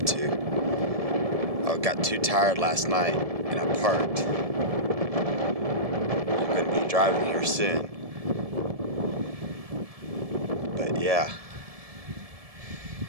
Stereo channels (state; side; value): late; left; 1.7 ms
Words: to. I got too tired last night and I parked. I'm going to be driving here soon. But yeah,